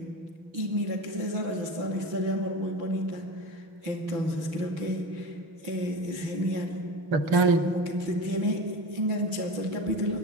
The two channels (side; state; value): left; late; 6.2 ms